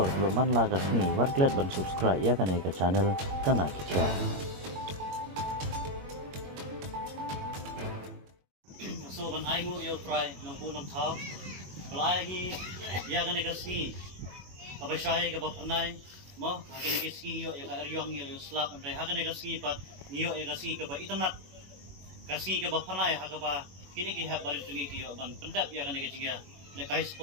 man lagas ni warklet ban subscribe ya kana ka channel kana kicha. So ban ai mo yo try nang punong thao. Palaya hi ya kana ka ski. Kabashay ka bapanay mo hakin ka ski yo ya ka eryong yo slap and hakin ka ski pat niyo ya ka ski ka ba itanat. Ka ski ka bapanay ha ka ba kini ki ha barit tungi ki yo ban pendap ya kana ka jinga le kai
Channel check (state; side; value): late; left; 21 ms